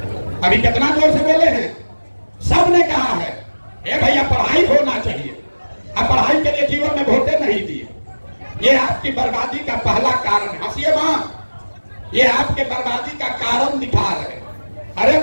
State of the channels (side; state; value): both; inverted; correlation -1.00